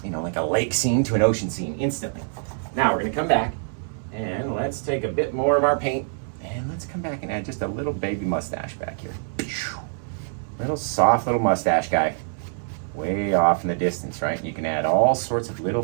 a lake scene to an ocean scene instantly. Now we're gonna come back and let's take a bit more of our paint and let's come back and add just a little baby mustache back here. Little soft little mustache guy. Way off in the distance, right? You can add all sorts of little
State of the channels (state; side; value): silent; left; digital silence